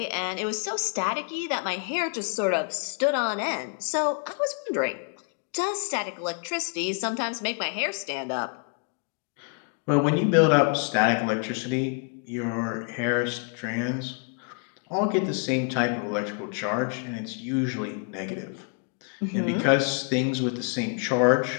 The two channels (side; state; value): right; quieter; 38.1 dB